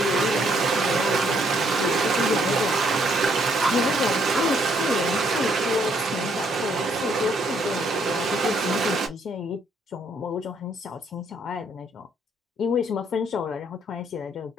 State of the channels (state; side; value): normal; both; correlation 0.69